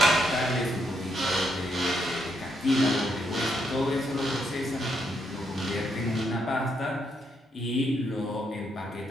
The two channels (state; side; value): normal; both; correlation 0.76